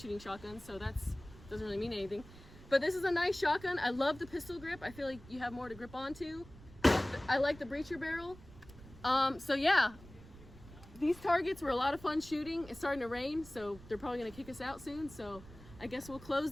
shotguns, so that's doesn't really mean anything. But this is a nice shotgun. I love the pistol grip. I feel like you have more to grip onto. I like the breacher barrel. So yeah, these targets were a lot of fun shooting. It's starting to rain, so they're probably gonna kick us out soon. So I guess we'll close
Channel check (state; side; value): noise; right; rumble, 19 dB below the sound